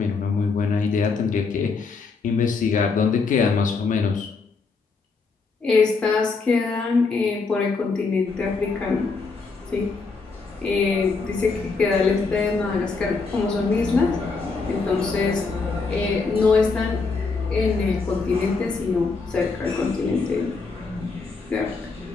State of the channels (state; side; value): quieter; right; 4.4 dB